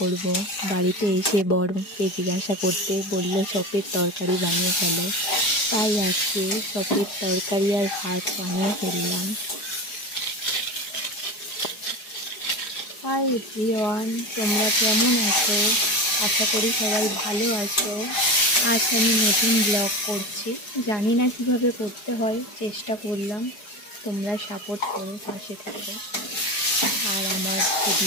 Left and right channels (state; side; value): late; right; 4.8 ms